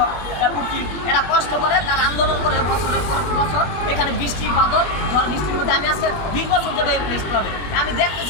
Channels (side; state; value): right; late; 20 ms